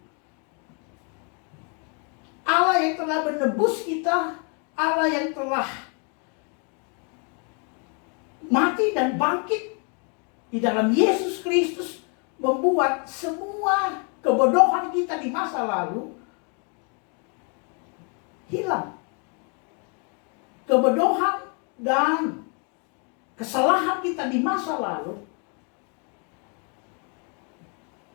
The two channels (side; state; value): right; quieter; 37.5 dB